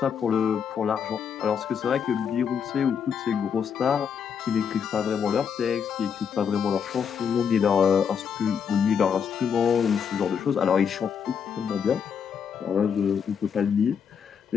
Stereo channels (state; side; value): quieter; right; 7.1 dB